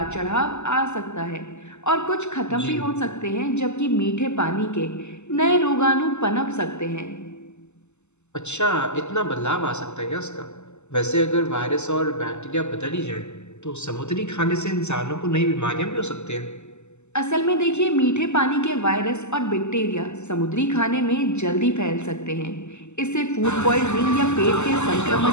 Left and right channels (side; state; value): right; late; 0.83 ms